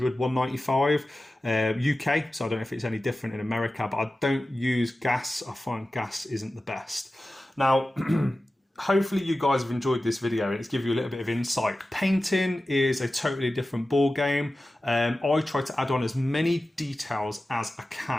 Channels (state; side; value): normal; both; correlation 0.95